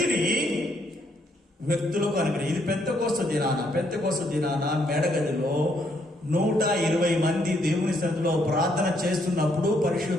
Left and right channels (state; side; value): normal; both; correlation 0.72